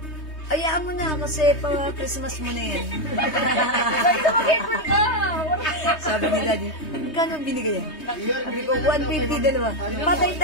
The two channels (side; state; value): right; late; 3.2 ms